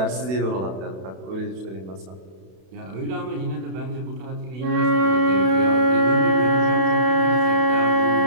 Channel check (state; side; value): late; left; 32 ms